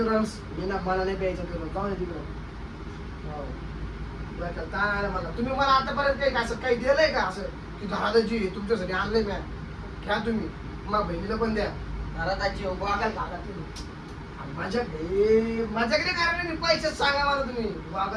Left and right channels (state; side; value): identical; both; correlation 1.00